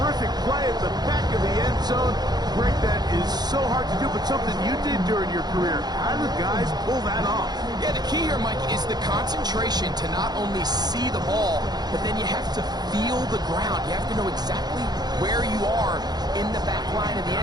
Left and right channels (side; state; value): left; late; 0.20 ms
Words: play at the back of the end zone. Greg, that is so hard to do, but something you did during your career. How do the guys pull that off? Yeah, the key here, Mike, is the concentration to not only see the ball, but then you have to feel the ground. You have to know exactly where you are in the back line of the